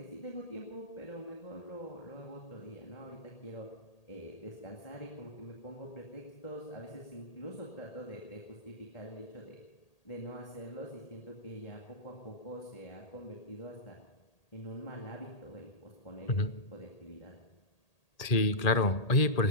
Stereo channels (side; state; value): right; late; 1.8 ms